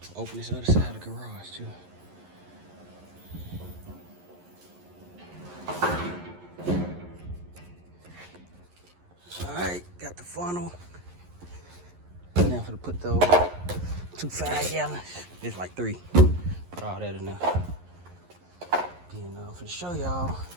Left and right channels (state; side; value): late; left; 11 ms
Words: Open this other side of the garage too. All right, got the funnel. Now I'm gonna put those 2 5-gallons. There's like 3. Put all that in there. Then I'm gonna show y'all.